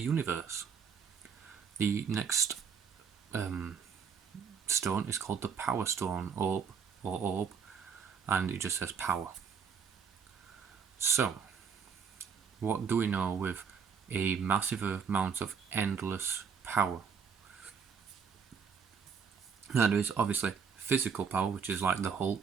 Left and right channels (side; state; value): left; quieter; 6.6 dB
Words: The next stone is called the Power Stone orb, and it just says power. So, what do we know with a massive amount of endless power? Now there is obviously physical power, which is like the